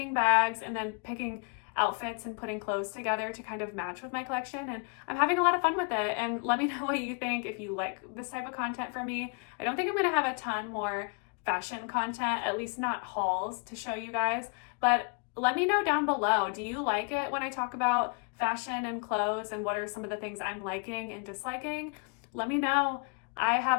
bags and then picking outfits and putting clothes together to kind of match with my collection, and I'm having a lot of fun with it. And let me know what you think if you like this type of content from me. I don't think I'm going to have a ton more fashion content, at least not hauls, to show you guys, but let me know down below. Do you like it when I talk about fashion and clothes, and what are some of the things I'm liking and disliking? Let me know. I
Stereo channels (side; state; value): right; quieter; 35.9 dB